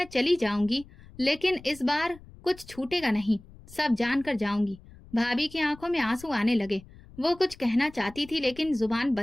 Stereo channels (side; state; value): left; noise; rumble, 21 dB below the sound